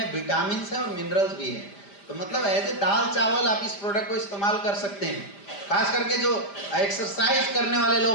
विटामिन है और मिनरल्स भी है। तो मतलब ऐसे दाल चावल आप इस प्रोडक्ट को इस्तेमाल कर सकते हैं। खास करके जो एक्सरसाइज करने वाले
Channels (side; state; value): right; late; 5.0 ms